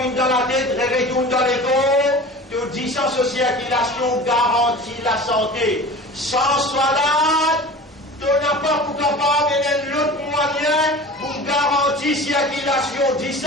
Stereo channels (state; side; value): normal; both; correlation 0.37